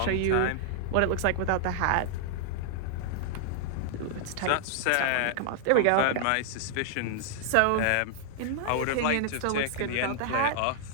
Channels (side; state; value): both; different; correlation -0.01